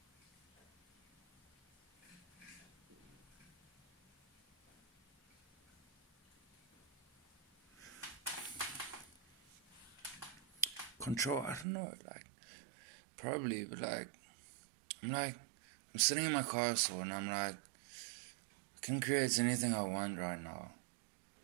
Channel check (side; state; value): left; drops out; at 11.7 s